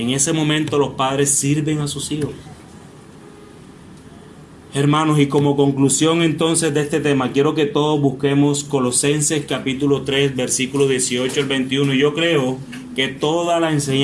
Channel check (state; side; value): identical; both; correlation 1.00